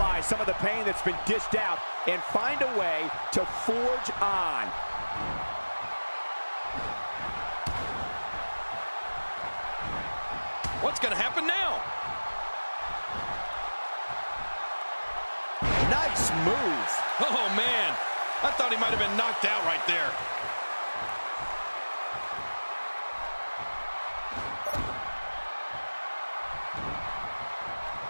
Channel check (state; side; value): inverted; both; correlation -1.00